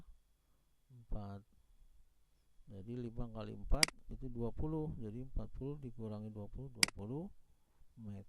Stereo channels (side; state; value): both; identical; correlation 1.00